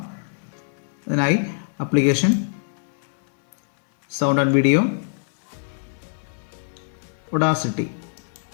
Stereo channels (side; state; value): right; silent; digital silence